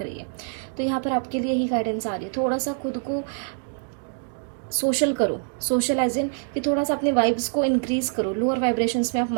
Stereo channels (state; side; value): silent; left; 56 dB below the other